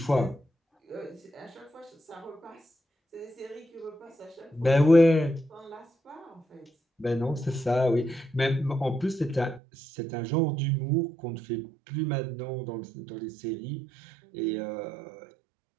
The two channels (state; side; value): drops out; left; at 9.6 s